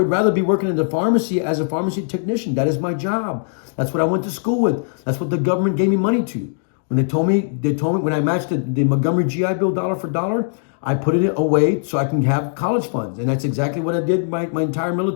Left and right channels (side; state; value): right; silent; digital silence